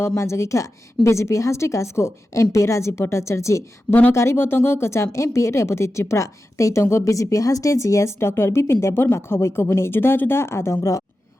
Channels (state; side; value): normal; both; correlation 0.92